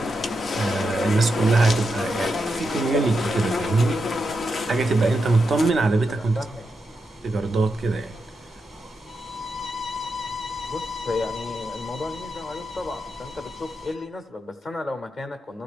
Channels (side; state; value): both; normal; correlation 0.86